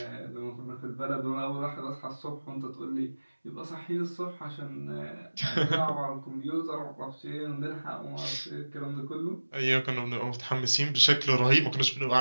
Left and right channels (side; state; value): both; inverted; correlation -1.00